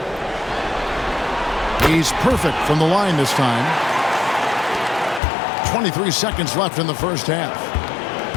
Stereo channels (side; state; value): right; drops out; at 5.2 s